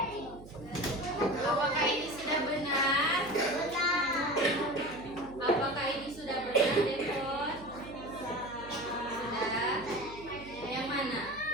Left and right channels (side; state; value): right; noise; hum, 18 dB below the sound